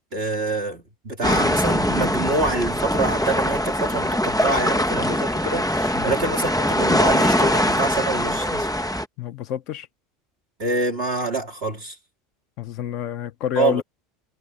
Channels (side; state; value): both; normal; correlation 0.47